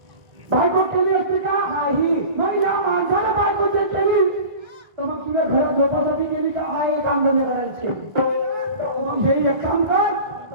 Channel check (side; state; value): left; late; 1.8 ms